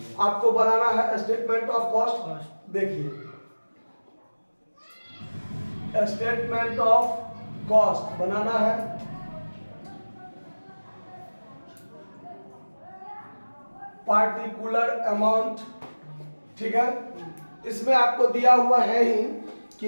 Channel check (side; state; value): both; inverted; correlation -1.00